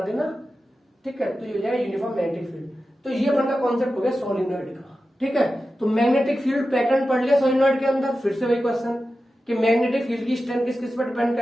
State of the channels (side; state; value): both; normal; correlation 0.93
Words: देना, ठीक है, तो ये हो जाएगा यूनिफॉर्म मैग्नेटिक फील्ड। तो ये अपना कॉन्सेप्ट हो गया सोलिनॉइड का, ठीक है। तो मैग्नेटिक फील्ड पैटर्न पढ़ लिया सोलिनॉइड के अंदर। फिर से वही क्वेश्चन कि मैग्नेटिक फील्ड की स्ट्रेंथ किस किस पर डिपेंड